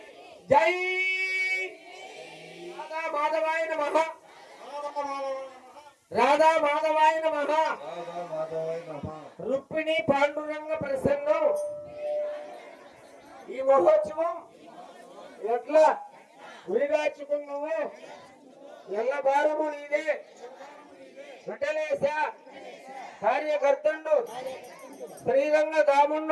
జై. రాధా మాధవాయ నమః. రాధా మాధవాయ నమః. రుక్మిణి పాండురంగ ప్రసన్నం. ఈ మహోత్సవం ఎట్లా ఉరిగాచుకున్నావు? ఎల్ల భారము నీదే. వెంటలేశ కార్యకర్తండు శ్రీరంగ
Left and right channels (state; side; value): identical; both; correlation 1.00